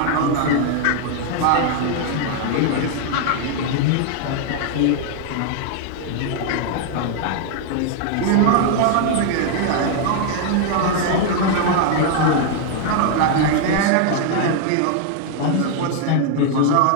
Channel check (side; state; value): both; different; correlation 0.00